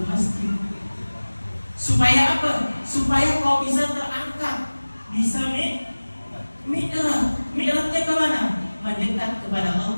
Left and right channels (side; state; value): both; inverted; correlation -1.00